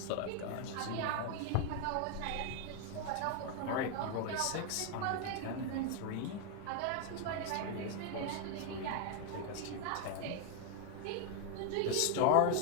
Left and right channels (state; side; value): different; both; correlation 0.00